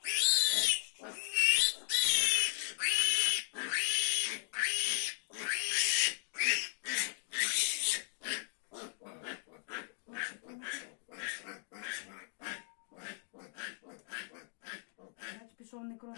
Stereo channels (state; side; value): silent; right; digital silence